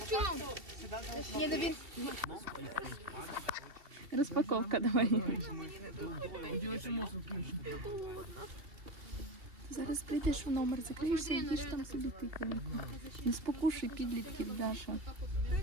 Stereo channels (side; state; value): left; late; 2.7 ms